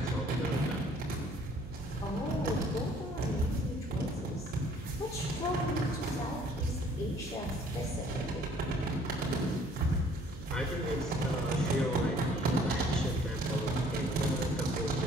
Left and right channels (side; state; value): right; noise; hum, 13 dB below the sound